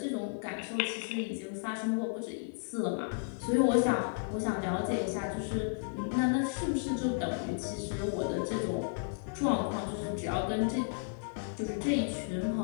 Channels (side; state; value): right; silent; digital silence